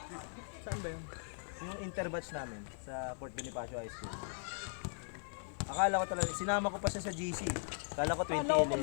Saan ba yun? Yung interbatch namin sa Fort Bonifacio High School. Akala ko talaga, sinama ko pa siya sa GC. Akala ko Alam ko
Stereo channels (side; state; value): right; silent; 52 dB below the other